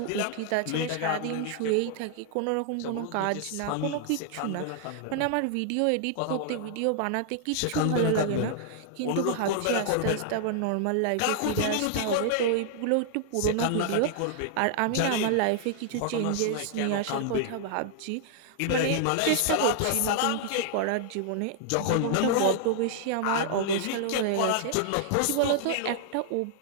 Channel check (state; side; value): different; both; correlation -0.01